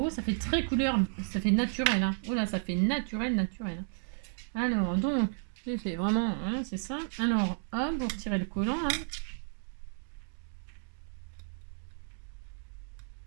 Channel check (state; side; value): silent; left; digital silence